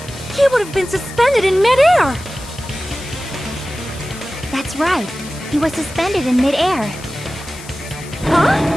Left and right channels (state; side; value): noise; left; hiss, 17 dB below the sound